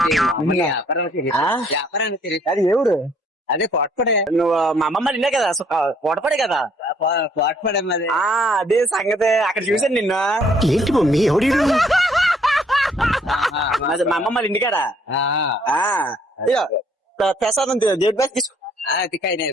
వ్యాపారానికి తిరిగి అది ఎవరు? అదే కోటపడే. నువ్వు మా అమ్మమ్మ నిన్నే కదా కోటపడే కదా. కోటపడే మరి. అదే సంగతి. అక్కడ చూసాను నిన్ను. ఏంటి మమ్మీ ఎవడి మా అమ్మమ్మ ఇంటికాడా ప్రసాదం దేవుడి బ్యాగ్ తీసుకో.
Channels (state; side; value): normal; both; correlation 0.64